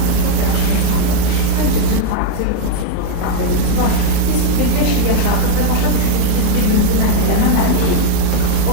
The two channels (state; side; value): different; both; correlation 0.01